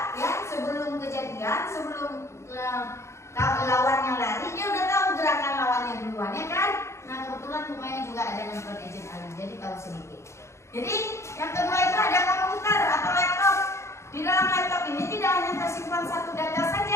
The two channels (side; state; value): right; late; 0.14 ms